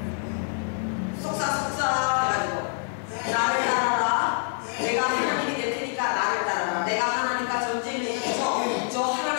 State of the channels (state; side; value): silent; right; 58 dB below the other